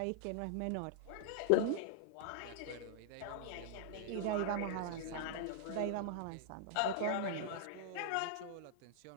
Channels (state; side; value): different; both; correlation -0.01